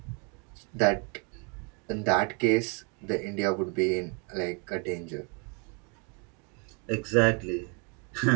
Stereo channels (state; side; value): quieter; left; 34.3 dB